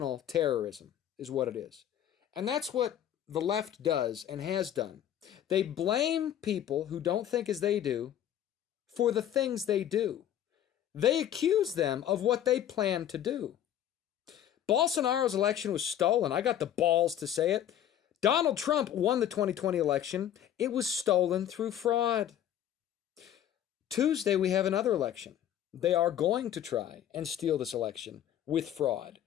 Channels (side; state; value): right; quieter; 10.7 dB